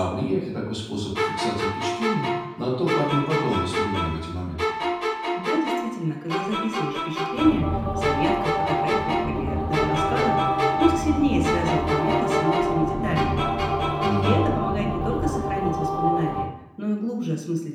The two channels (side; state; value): both; identical; correlation 1.00